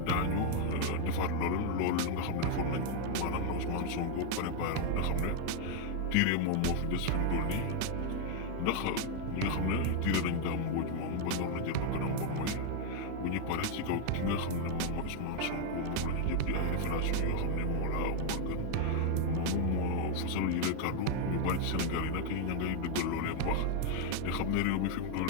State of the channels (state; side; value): different; both; correlation 0.00